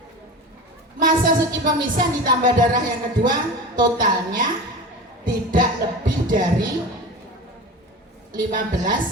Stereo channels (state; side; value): normal; both; correlation 0.31